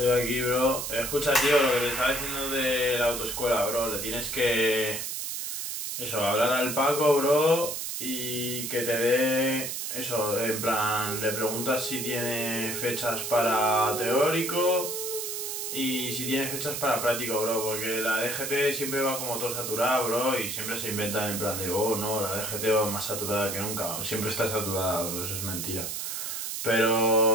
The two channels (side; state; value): right; noise; hiss, 4 dB below the sound